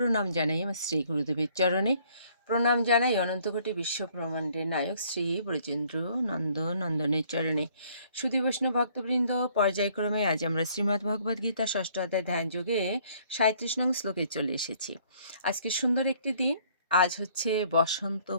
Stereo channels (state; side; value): inverted; both; correlation -0.61